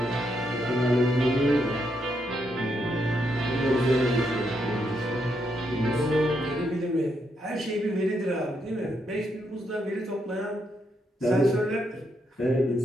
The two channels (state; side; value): normal; both; correlation 0.79